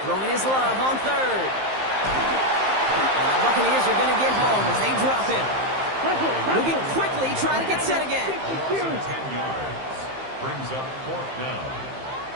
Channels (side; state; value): left; late; 15 ms